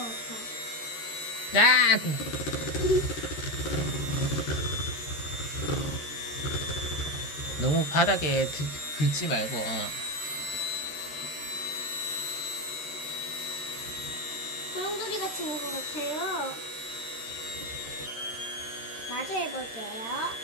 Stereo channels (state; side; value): late; right; 13 ms